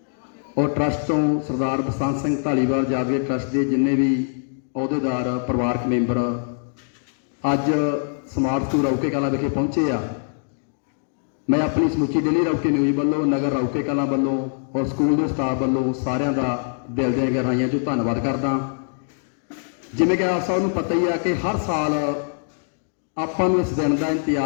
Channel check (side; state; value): right; silent; digital silence